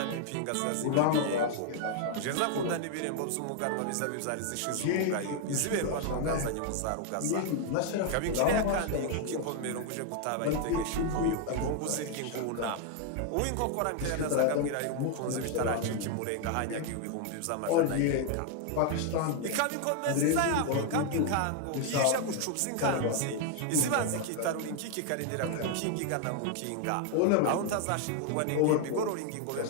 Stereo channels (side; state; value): both; different; correlation 0.00